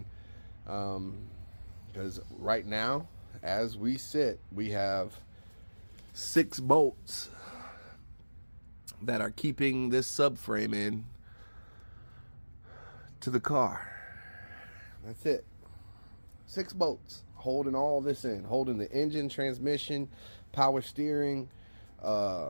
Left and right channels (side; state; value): both; inverted; correlation -1.00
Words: because right now, as we sit, we have 6 bolts that are keeping this subframe in to the car. That's it. 6 bolts holding all this in, holding the engine, transmission, power steering,